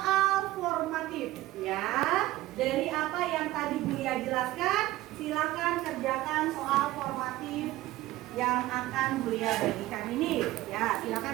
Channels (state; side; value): quieter; left; 16.8 dB